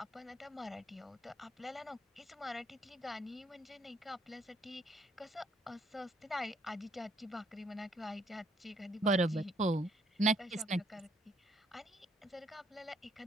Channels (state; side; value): normal; both; correlation 0.68